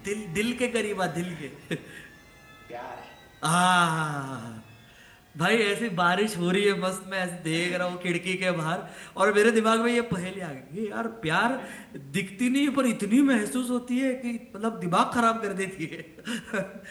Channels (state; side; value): identical; both; correlation 1.00